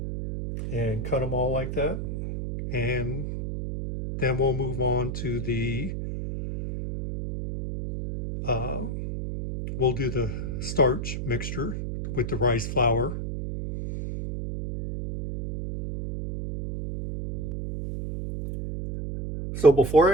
and cut them all like that, and then we'll move on to the we'll do the starch mixture with the rice flour. So before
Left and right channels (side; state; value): right; noise; hum, 5 dB below the sound